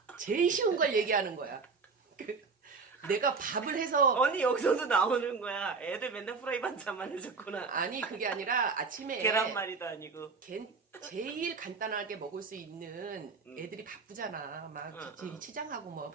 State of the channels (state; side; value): quieter; left; 4.8 dB